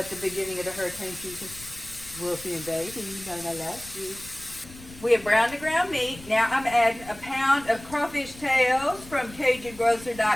the beginning of the hurricane season. Wolfie and baby, Nonna loves you. We have browned the ground meat. Now I'm adding a pound of crawfish tails from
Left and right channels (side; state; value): left; noise; rumble, 18 dB below the sound